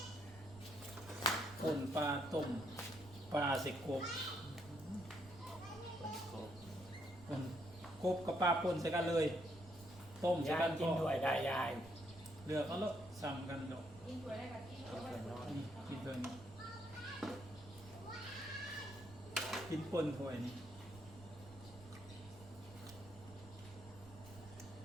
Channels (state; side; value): noise; right; rumble, 19 dB below the sound